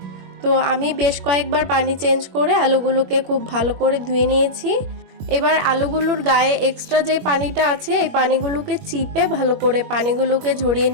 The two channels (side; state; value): left; late; 21 ms